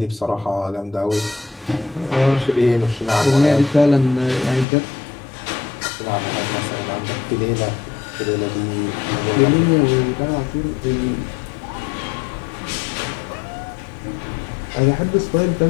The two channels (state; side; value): drops out; right; at 4.7 s